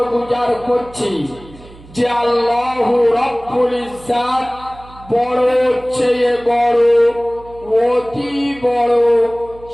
গুজার করছি যে আল্লাহ রব্বুল ইজ্জাত বড় চেয়ে বড়, অতি বড়,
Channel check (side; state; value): right; noise; hum, 21 dB below the sound